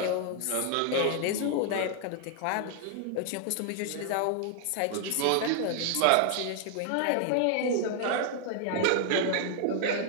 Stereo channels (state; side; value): different; both; correlation 0.00